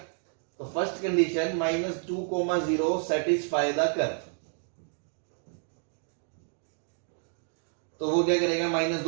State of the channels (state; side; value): silent; left; 58 dB below the other